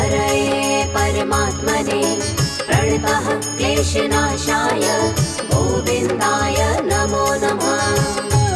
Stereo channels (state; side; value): identical; both; correlation 1.00